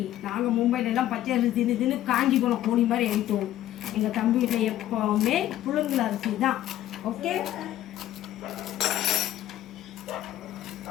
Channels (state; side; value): quieter; right; 13.1 dB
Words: நாங்கள் மும்பையில எல்லாம் பச்சை அரிசி தின்னு காஞ்சி போன கோணி மாதிரி ஆயிட்டோம். எங்கள் தம்பி வீட்டில் எப்பவுமே புழுங்கல் அரிசி தான். ஓகே,